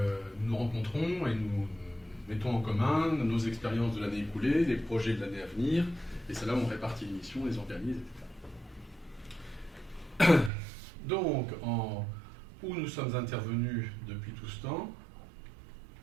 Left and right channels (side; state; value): left; drops out; at 10.5 s